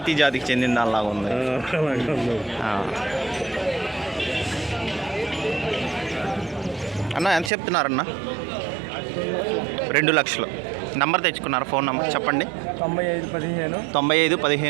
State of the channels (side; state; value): left; drops out; at 7.5 s